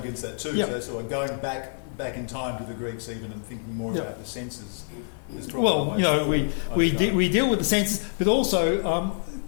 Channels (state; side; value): silent; right; digital silence